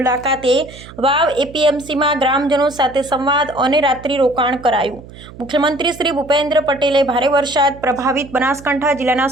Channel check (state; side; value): noise; right; hum, 18 dB below the sound